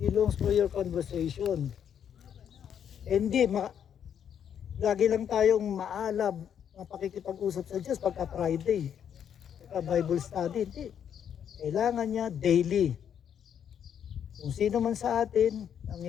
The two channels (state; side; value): quieter; right; 8.7 dB